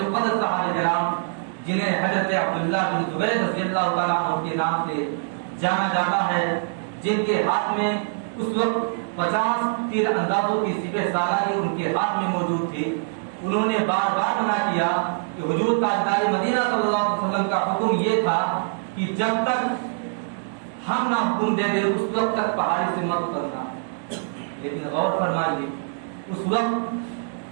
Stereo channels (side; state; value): left; silent; digital silence